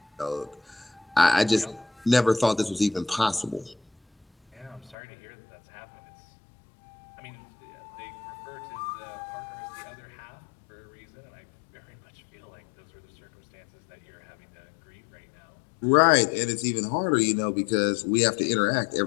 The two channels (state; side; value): drops out; right; at 5.0 s